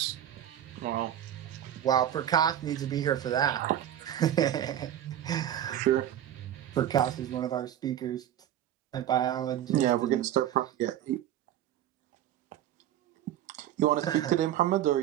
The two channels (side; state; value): left; quieter; 11.4 dB